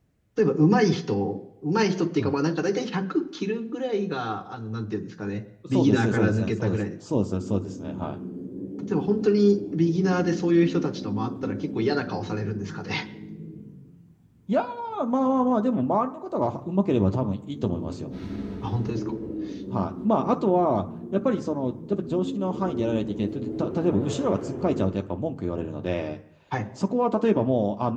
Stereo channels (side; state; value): both; identical; correlation 1.00